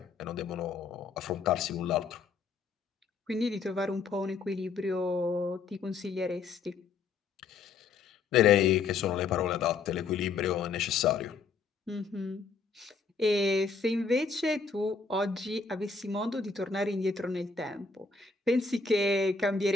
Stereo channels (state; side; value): quieter; right; 4.8 dB